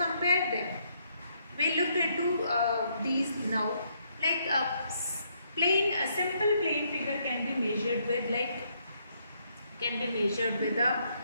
them. We look into these now. Like a simple plane figure can be measured with the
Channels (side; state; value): both; inverted; correlation -0.72